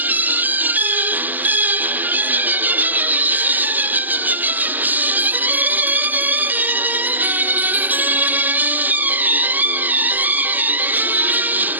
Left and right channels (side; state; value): left; late; 0.085 ms